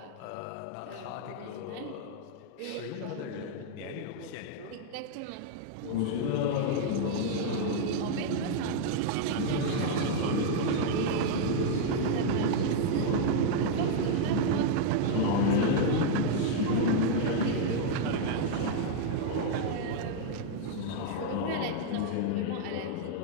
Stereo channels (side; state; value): both; different; correlation -0.01